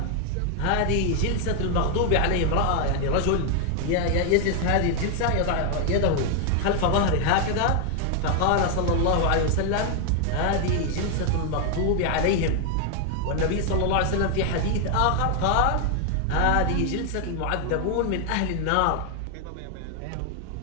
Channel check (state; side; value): different; both; correlation 0.00